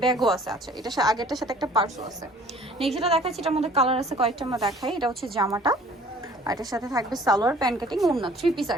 ব্যাগও আছে। আচ্ছা, এটা আগেরটার সাথে একটা পার্সও আছে। নেক্সট যেটা দেখাচ্ছি এটার মধ্যে কালার আছে কয়েকটা, আমরা দেখাই। এটা হচ্ছে জামাটা, আর এটার সাথে থাকবে সালোয়ার, প্যান্ট কাটিং, ওড়না, 3 পিস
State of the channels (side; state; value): both; normal; correlation 0.53